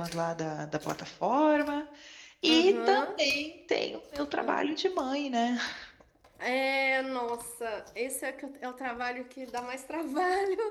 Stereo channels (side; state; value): both; identical; correlation 1.00